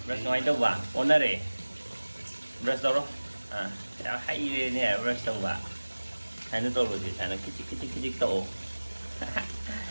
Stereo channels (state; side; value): inverted; both; correlation -1.00